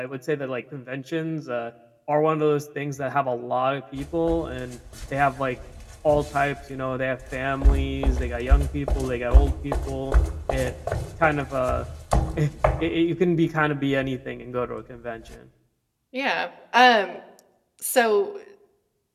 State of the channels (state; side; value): identical; both; correlation 1.00